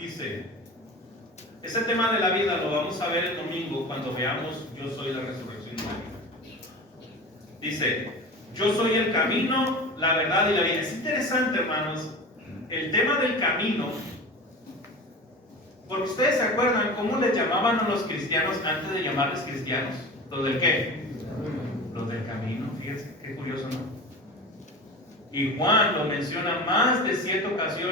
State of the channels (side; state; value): both; normal; correlation 0.32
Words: Ese tema de la vida lo vamos a ver el domingo cuando veamos yo soy la resurrección y la vida. Dice, yo soy el camino, la verdad y la vida. Es interesante, hermanos, el tema del camino, porque ustedes se acuerdan cómo les llamaban a los cristianos antes de llamarles cristianos. ¿Los del qué? Los del camino. Fíjense, qué curioso, ¿no? Y Juan lo menciona más de 7